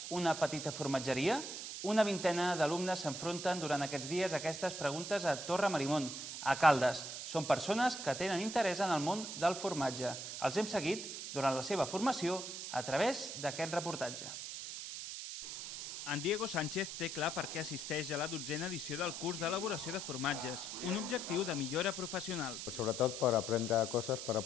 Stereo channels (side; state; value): right; noise; hiss, 7 dB below the sound